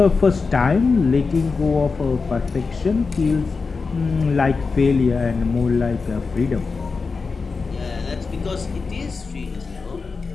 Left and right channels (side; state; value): right; quieter; 4.6 dB